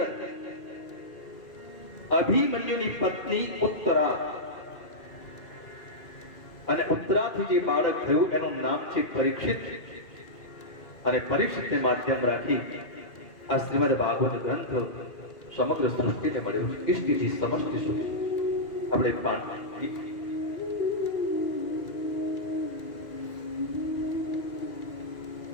અભિમન્યુની પત્ની ઉત્તરા અને ઉત્તરાથી જે બાળક થયું એનું નામ છે પરીક્ષિત। અને પરીક્ષિતને માધ્યમ રાખી આ શ્રીમદ ભાગવત ગ્રંથ સમગ્ર સૃષ્ટિને મળ્યો છે, ઇષ્ટિથી સમષ્ટિ સુધી। આપણે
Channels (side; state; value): right; late; 2.5 ms